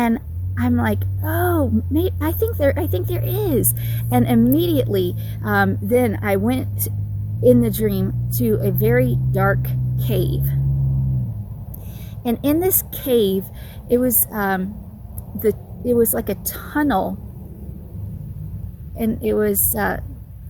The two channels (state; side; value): identical; both; correlation 1.00